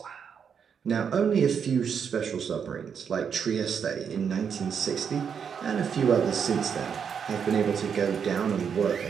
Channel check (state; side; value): quieter; left; 7.1 dB